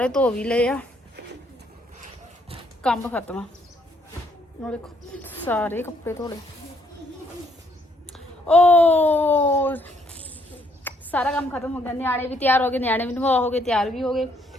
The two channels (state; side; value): normal; both; correlation 0.69